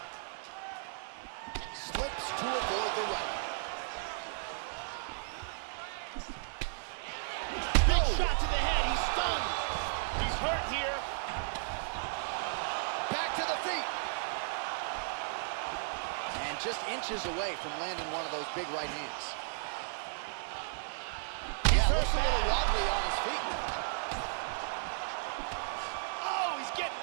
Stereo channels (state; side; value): silent; left; 55 dB below the other